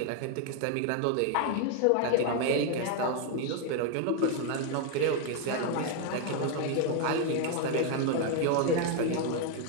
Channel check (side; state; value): both; different; correlation 0.00